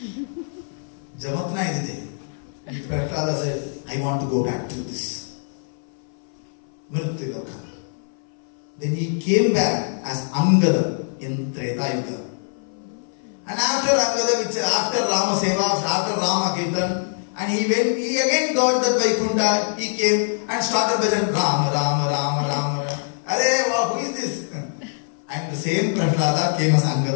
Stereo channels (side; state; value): right; silent; 60 dB below the other